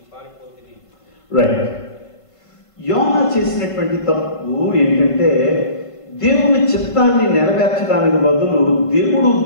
పారిపోతిని. రైట్. యోనా చేసినటువంటి తప్పు ఏంటంటే, దేవుని చిత్తాన్ని నెరవేర్చడానికి బదులు దేవుడు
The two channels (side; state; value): right; late; 1.5 ms